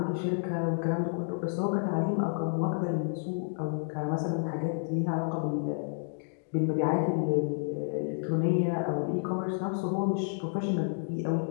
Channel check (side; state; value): right; silent; digital silence